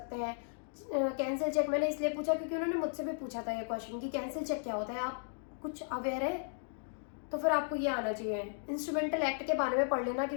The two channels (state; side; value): silent; right; digital silence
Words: हैं। कैंसिल चेक मैंने इसलिए पूछा क्योंकि उन्होंने मुझसे भी पूछा था ये क्वेश्चन कि कैंसिल चेक क्या होता है, आप कुछ अवेयर है? तो फिर आपको ये आना चाहिए। इंस्ट्रूमेंटल एक्ट के बारे में पढ़ लेना